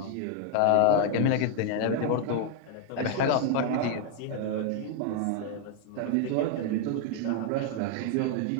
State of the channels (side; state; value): both; different; correlation 0.00